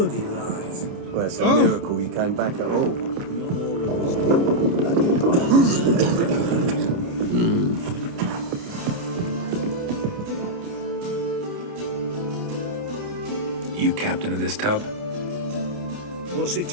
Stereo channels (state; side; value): late; left; 29 ms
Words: lies. Well, it's a miracle you came back at all. Not all of You captain of this tub? What's it